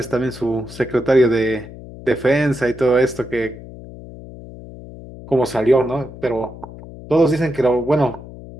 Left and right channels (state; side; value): noise; left; hum, 15 dB below the sound